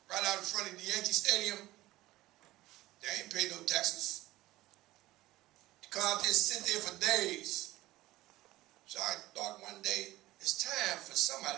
right out in front of the Yankee Stadium. They ain't pay no taxes. Come out there and sit there for days. So I thought one day, it's time for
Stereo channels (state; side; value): quieter; left; 17.3 dB